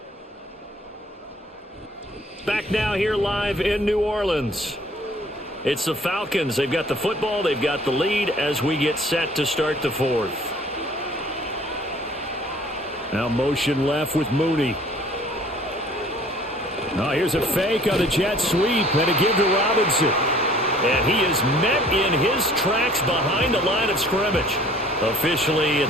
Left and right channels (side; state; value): both; normal; correlation 0.54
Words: Back now here live in New Orleans. It's the Falcons. They've got the football. They've got the lead as we get set to start the fourth. Now motion left with Mooney. Now here's a fake on the jet sweep and a give to Robinson. And he is met in his tracks behind the line of scrimmage. Officially,